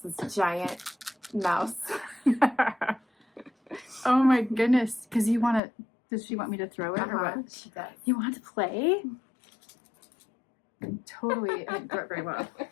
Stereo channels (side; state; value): right; drops out; at 5.6 s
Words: this giant mouse. Oh my goodness. Because you want to, does she want me to throw it or what? She does. You want to play? Totally. I didn't throw it very well.